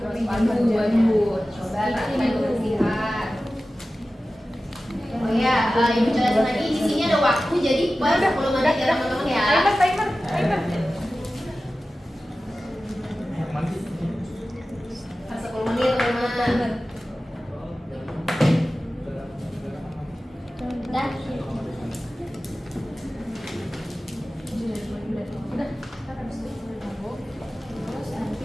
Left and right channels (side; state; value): both; normal; correlation 0.95